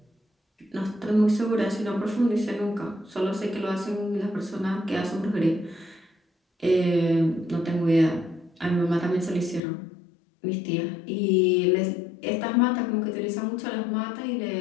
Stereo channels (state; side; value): drops out; right; at 9.6 s